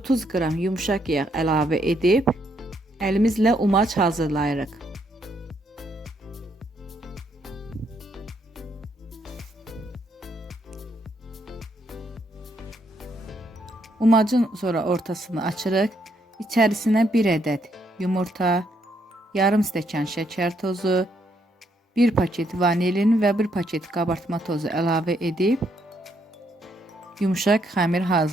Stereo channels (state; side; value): normal; both; correlation 0.74